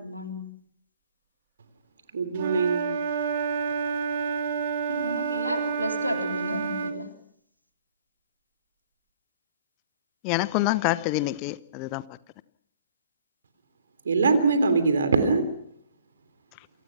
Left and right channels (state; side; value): inverted; both; correlation -0.57